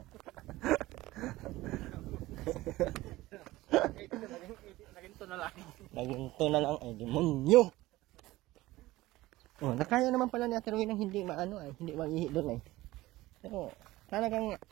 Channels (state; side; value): quieter; left; 18.0 dB